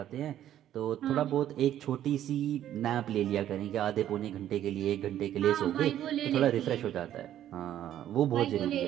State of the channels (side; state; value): left; quieter; 11.5 dB